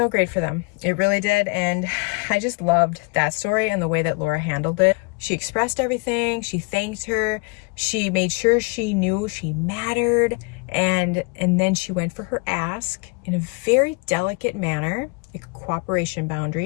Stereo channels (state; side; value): quieter; right; 30.5 dB